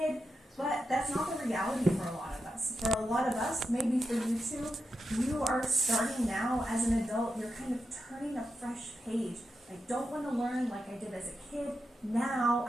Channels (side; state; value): both; normal; correlation 0.87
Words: but that's not the reality for a lot of us. For a lot of us, maybe for you too, you are starting now as an adult. You're kind of turning a fresh page. I don't want to learn like I did as a kid. Now